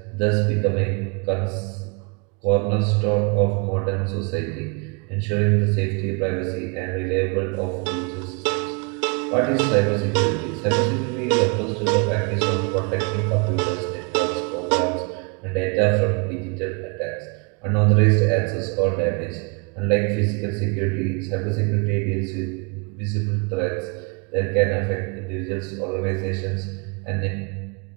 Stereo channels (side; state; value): left; quieter; 33.2 dB